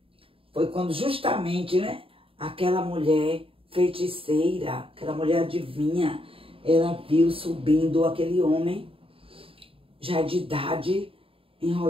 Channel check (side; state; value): left; late; 0.27 ms